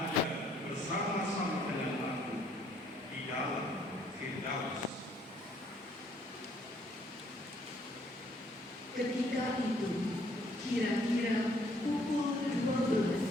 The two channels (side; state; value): both; normal; correlation 0.65